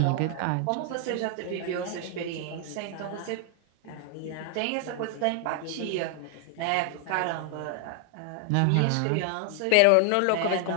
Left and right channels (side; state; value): both; different; correlation 0.00